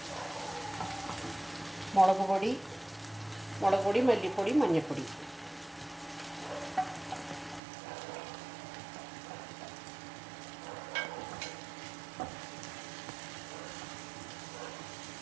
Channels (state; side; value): drops out; left; at 7.6 s